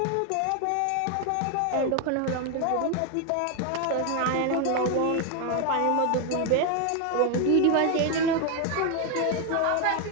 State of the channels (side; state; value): both; different; correlation 0.01